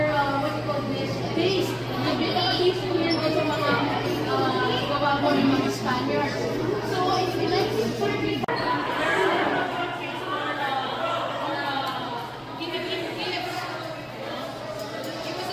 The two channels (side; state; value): both; identical; correlation 1.00